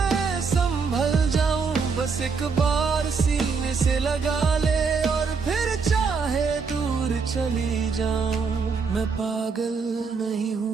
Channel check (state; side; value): quieter; left; 5.2 dB